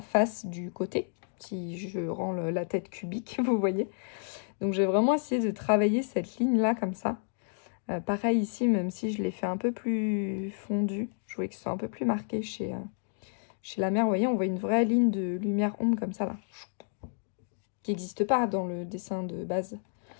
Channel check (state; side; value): silent; right; digital silence